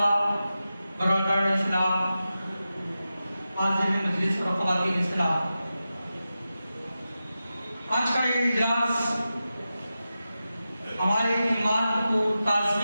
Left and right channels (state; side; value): inverted; both; correlation -0.92